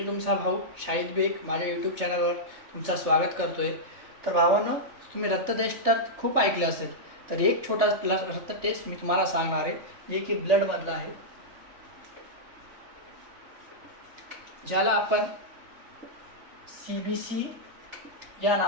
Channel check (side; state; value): left; late; 3.3 ms